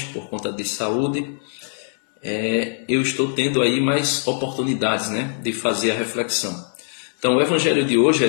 por conta de saúde, eu estou tendo aí mais oportunidades, de fazer a reflexão. Então, o Evangelho de hoje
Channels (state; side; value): silent; right; digital silence